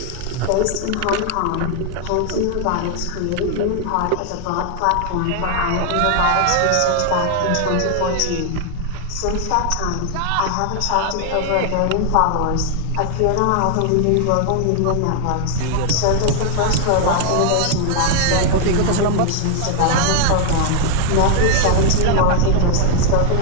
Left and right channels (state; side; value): different; both; correlation 0.00